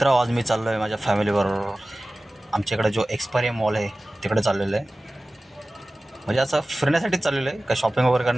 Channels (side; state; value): both; normal; correlation 0.97